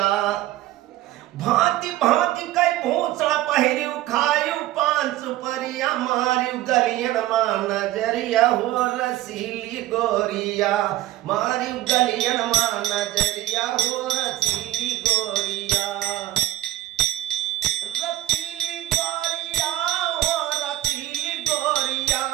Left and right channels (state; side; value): quieter; left; 15.3 dB